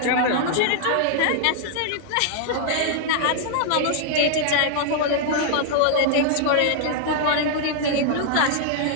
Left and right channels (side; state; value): both; different; correlation -0.01